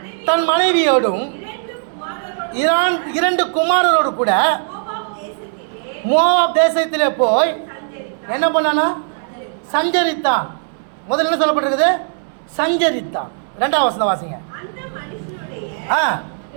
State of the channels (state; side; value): silent; left; 67 dB below the other